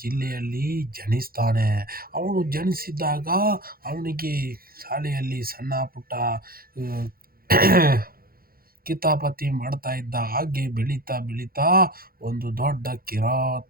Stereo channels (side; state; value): left; late; 0.43 ms